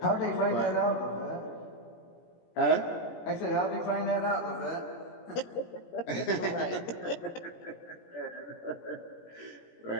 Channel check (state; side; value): late; right; 17 ms